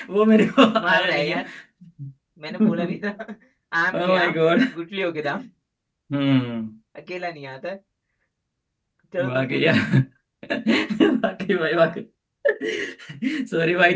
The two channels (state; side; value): identical; both; correlation 1.00